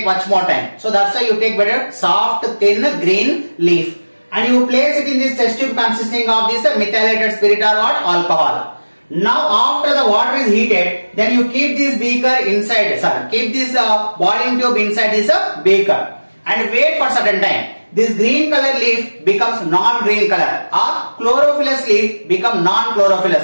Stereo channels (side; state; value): both; inverted; correlation -1.00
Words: much more time. So that's why you take better soft, thin, green leaf, and you place it in this test tube consisting of this methylated spirit or what? Alcohol. Now after the water is heated, then you keep this beaker inside, keep this boiling tube inside this beaker and wait for certain time. This green color leaf becomes non-green color, or chlorophyllous leaf become